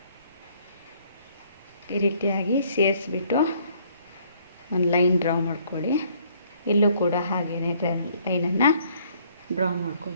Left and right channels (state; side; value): inverted; both; correlation -0.63